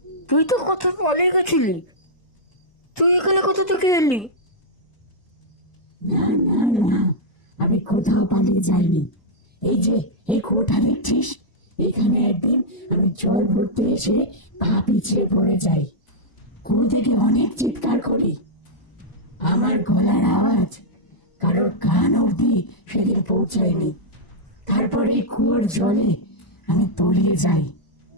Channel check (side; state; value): right; late; 1.0 ms